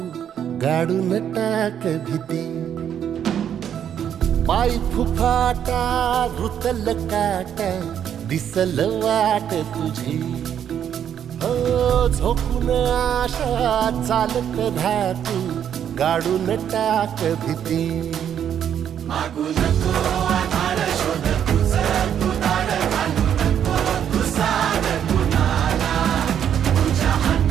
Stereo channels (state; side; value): quieter; left; 9.2 dB